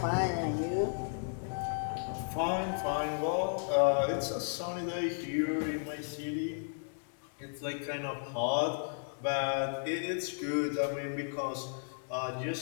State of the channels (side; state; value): right; silent; digital silence